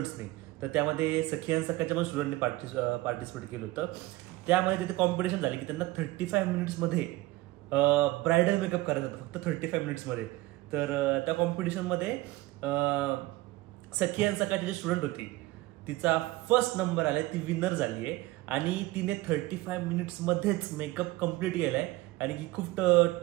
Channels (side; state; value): left; quieter; 18.8 dB